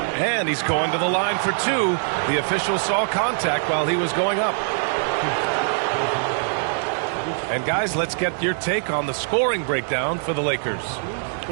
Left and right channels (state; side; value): silent; left; 64 dB below the other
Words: And he's going to the line for 2. The official saw contact while he was going up. And guys, let's get your take on the scoring breakdown for the Lakers.